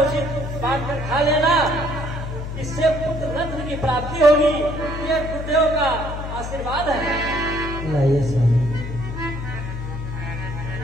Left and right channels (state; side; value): noise; left; hum, 6 dB below the sound